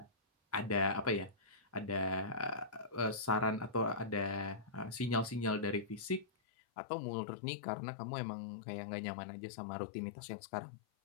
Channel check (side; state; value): right; drops out; at 6.2 s